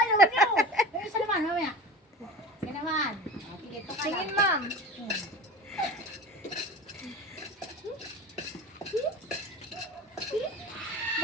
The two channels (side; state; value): both; normal; correlation 0.34